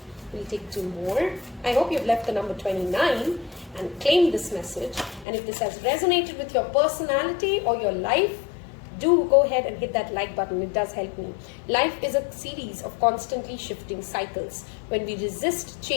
We'll take two more. I hope you've left the number 29 and claimed this message. And if this has resonated with your personality or your life, do go ahead and hit that like button. It does help me. Life is a series of constantly shifting cycles. When we resist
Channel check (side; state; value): right; drops out; at 5.2 s